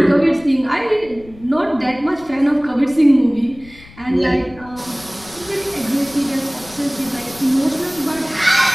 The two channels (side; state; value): left; noise; rumble, 22 dB below the sound